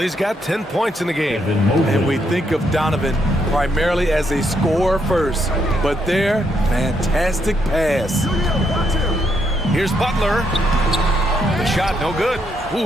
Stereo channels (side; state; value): both; normal; correlation 0.76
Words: got 10 points in the game. And we think of Donovan primarily as a scorer first, but their fantastic pass. Here's Butler. The shot no good.